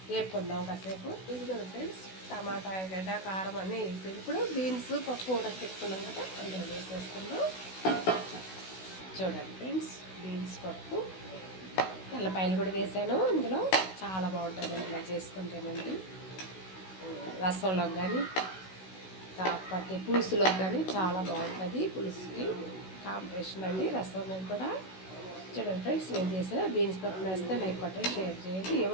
వేపుకుందాం కాసేపు. ఇదిగో ఫ్రెండ్స్, టమాటా, ఎర్రగడ్డ, కారం అన్నీ వేగిపోయింది. ఇప్పుడు బీన్స్ పప్పు కూడా పెట్టుకున్నాం కదా, అందులో వేసేసుకుందాం. చూడండి ఫ్రెండ్స్, బీన్స్ పప్పు, తెల్లపాయలు కూడా వేసాను. ఇందులో చాలా బాగుంటుంది ఇలా చేసుకుంటేనండి. రసంలోకి కానీ, కాకపోతే పులుసులోకి కానీ చాలా బాగుంటుంది. పులుసుకి కాంబినేషన్ అండి రసం కూడా. చూడండి ఫ్రెండ్స్, నేను చేసిన బీన్స్ పప్పు వేస్తే లైక్ కొట్టండి, షేర్ చేయండి.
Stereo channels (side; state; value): right; late; 16 ms